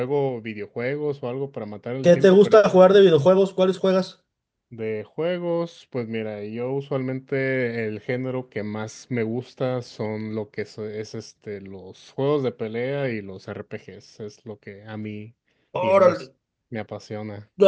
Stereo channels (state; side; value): identical; both; correlation 1.00